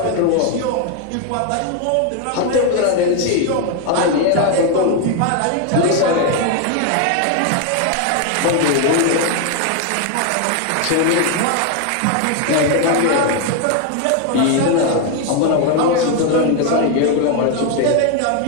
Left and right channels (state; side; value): different; both; correlation 0.01